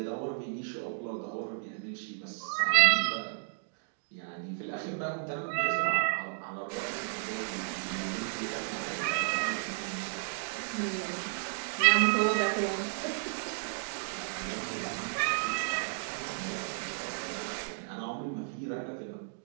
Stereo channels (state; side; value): silent; left; digital silence